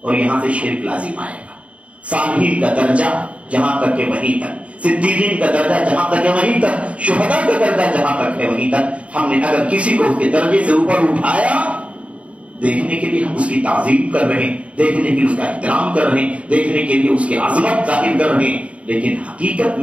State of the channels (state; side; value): late; left; 0.063 ms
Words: اور یہاں سے شرک لازم آئے گا۔ صالحین کا درجہ جہاں تک ہے وہیں تک، صدیقین کا درجہ جہاں تک ہے وہیں تک، شہداء کا درجہ جہاں تک ہے وہیں تک۔ ہم نے اگر کسی کو اس کے درجے سے اوپر اٹھایا، دیکھنے کے لیے ہم اس کی تعظیم کر رہے ہیں، دیکھنے کے لیے اس کا احترام کر رہے ہیں، دیکھنے کے لیے اس کی عظمت ظاہر کر رہے ہیں، لیکن حقیقت